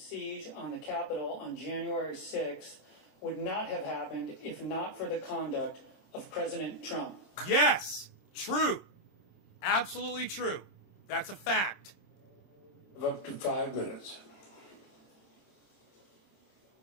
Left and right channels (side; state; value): right; late; 26 ms